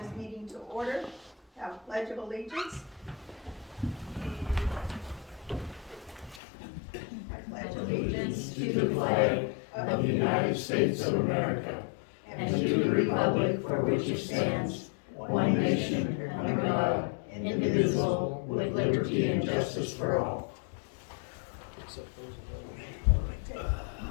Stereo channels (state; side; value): drops out; right; at 6.4 s